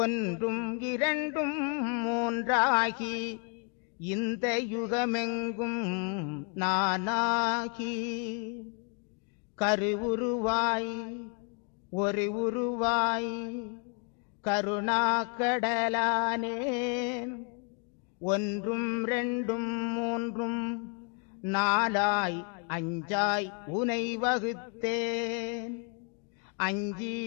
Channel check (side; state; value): right; quieter; 38.4 dB